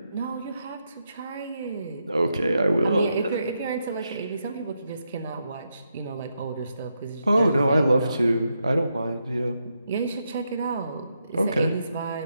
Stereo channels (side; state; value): both; inverted; correlation -0.82